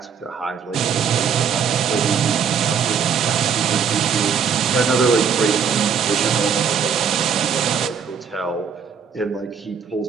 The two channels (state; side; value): quieter; left; 6.8 dB